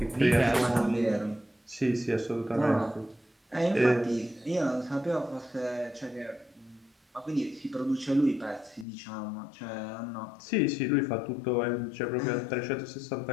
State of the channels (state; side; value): drops out; right; at 8.8 s